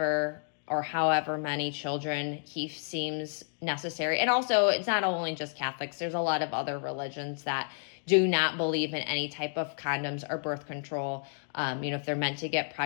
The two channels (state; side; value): silent; right; digital silence